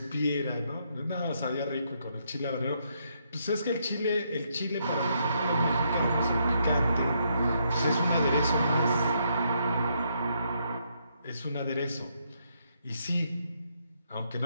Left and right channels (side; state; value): both; inverted; correlation -0.75